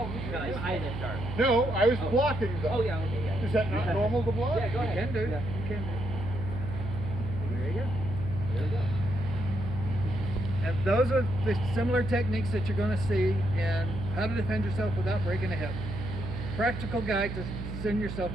I didn't start. No, I was blocking them. Oh yeah, okay, yeah. Is that not normal to block? Yeah, go ahead. You can do. Yeah. You can do. There you go. There you go. And those are the similar techniques that you're going to see in how to defend yourself without breaking a hip. Practical guide to send your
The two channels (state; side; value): noise; right; hum, 6 dB below the sound